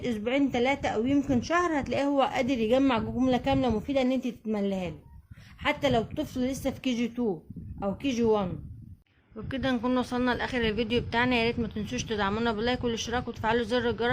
اسبوعين 3 او يمكن شهر هتلاقيه هو قادر يجمع جمله كامله مفيده ان انت تتمليها له، حتى لو طفل لسه في KG 2 او KG 1. وبكده نكون وصلنا لاخر الفيديو بتاعنا. يا ريت ما تنسوش تدعمونا باللايك والاشتراك وتفعلوا زر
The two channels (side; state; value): both; identical; correlation 1.00